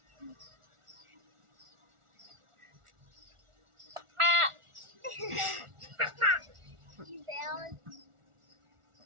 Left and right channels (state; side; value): late; left; 1.4 ms